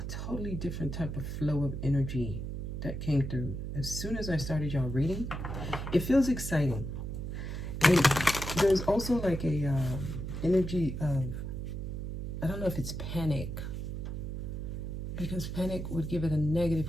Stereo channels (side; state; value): right; noise; hum, 5 dB below the sound